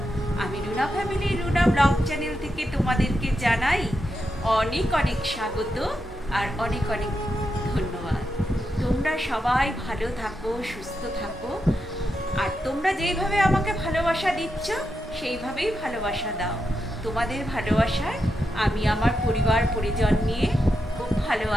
আমি Runa family, Runa blog channel থেকে তোমাদেরকে জানাই অনেক অনেক স্বাগত আর অনেক অনেক ধন্যবাদ। তোমরা সবাই ভালো থাকো, সুস্থ থাকো, আর তোমরা যেইভাবে আমাকে ভালোবাসা দিচ্ছ সেইভাবেই ভালোবাসা দাও। তোমাদের ভালোবাসায় আমি আমার পরিবার পরিজন নিয়ে খুব ভালো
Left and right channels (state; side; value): normal; both; correlation 0.86